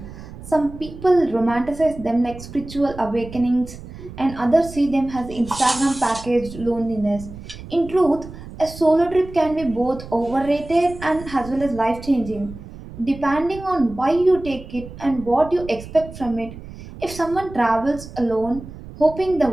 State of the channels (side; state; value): right; noise; rumble, 14 dB below the sound